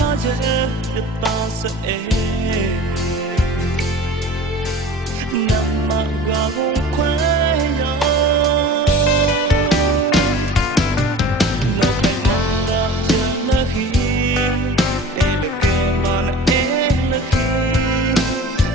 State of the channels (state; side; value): normal; both; correlation 0.41